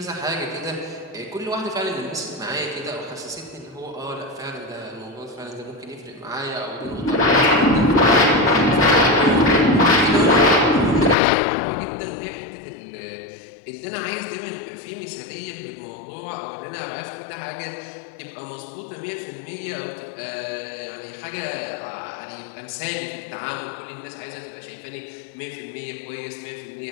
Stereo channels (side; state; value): right; drops out; at 11.2 s